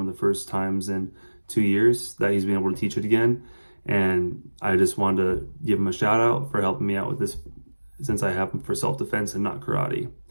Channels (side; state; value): both; inverted; correlation -1.00